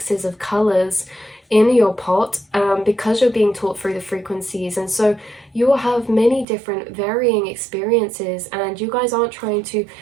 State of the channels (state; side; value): drops out; left; at 6.5 s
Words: of colors in your pot, because you're being taught through the frequencies. And so you will have many different varying experiences, and you guys aren't trying to